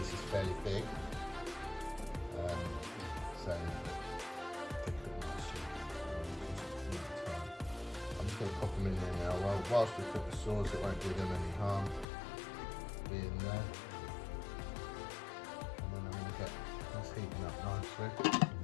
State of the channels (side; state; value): right; drops out; at 12.1 s